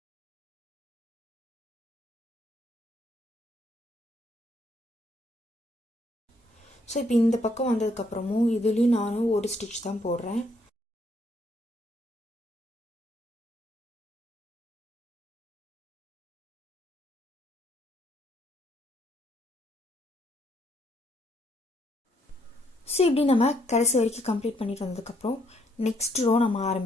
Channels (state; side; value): normal; both; correlation 0.71